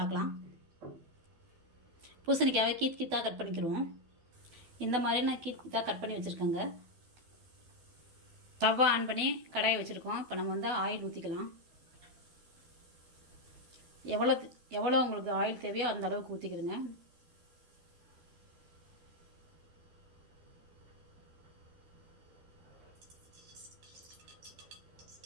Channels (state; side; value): late; left; 12 ms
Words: பூசணிக்காவை கீத்தாக கட் பண்ணிக்கிடுவோம். இந்த மாதிரி நான் கீத்தாக கட் பண்ணி வச்சுருக்கேங்க. தவா ஆன் பண்ணி கடாயை வச்சுருக்கோம். இப்போ நம்ம வந்து ஆயில் ஊற்றிக்கலாம். எவ்வளோ உங்களுக்கு ஆயில் தேவையோ அந்த அளவுக்கு ஊற்றிக்கிறங்க.